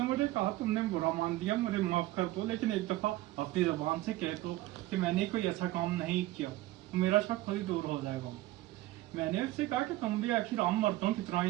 मुझे कहा तुमने बुरा मान लिया, मुझे माफ कर दो, लेकिन एक दफा अपनी जबान से कह दो कि मैंने कोई ऐसा काम नहीं किया तो मेरा शक खुद ही दूर हो जाएगा। मैंने उससे कहा कि तुम भी आखिर आम मर्दों की तरह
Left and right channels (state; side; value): quieter; left; 16.8 dB